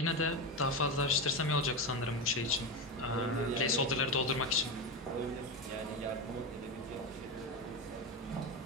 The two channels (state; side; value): normal; both; correlation 0.16